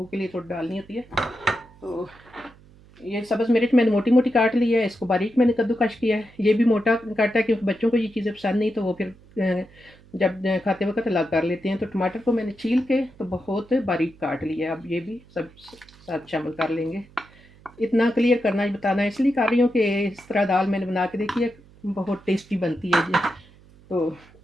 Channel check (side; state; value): right; noise; hum, 25 dB below the sound